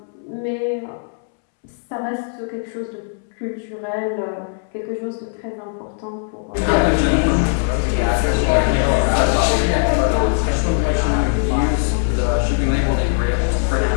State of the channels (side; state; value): right; silent; 66 dB below the other